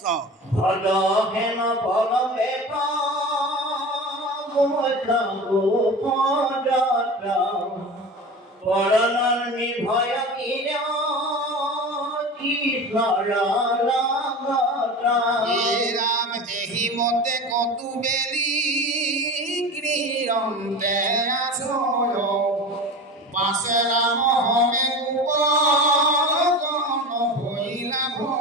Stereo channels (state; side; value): normal; both; correlation 0.31